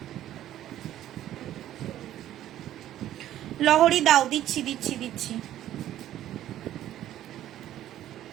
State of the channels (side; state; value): left; quieter; 12.5 dB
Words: লহরি দাও, দিচ্ছি।